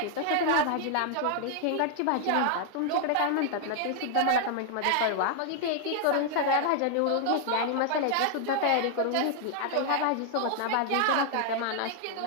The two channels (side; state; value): both; different; correlation 0.00